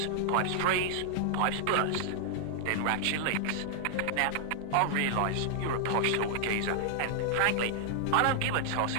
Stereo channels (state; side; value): different; both; correlation 0.00